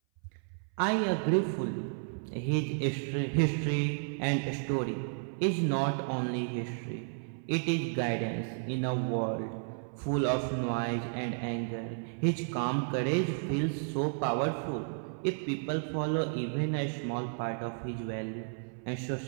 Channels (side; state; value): left; silent; 56 dB below the other